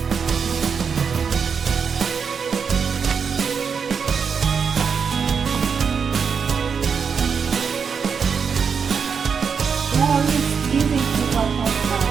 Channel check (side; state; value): left; quieter; 6.2 dB